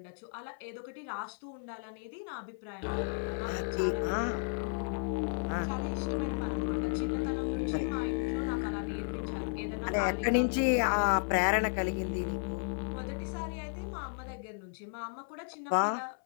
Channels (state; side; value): silent; right; 55 dB below the other